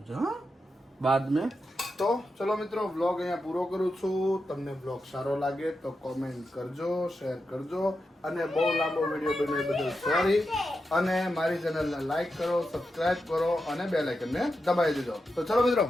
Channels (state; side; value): normal; both; correlation 0.88